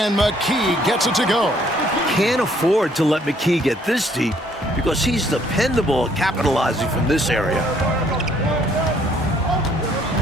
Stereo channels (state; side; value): normal; both; correlation 0.64